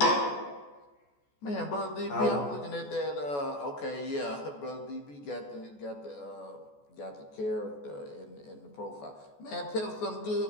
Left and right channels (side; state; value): right; late; 14 ms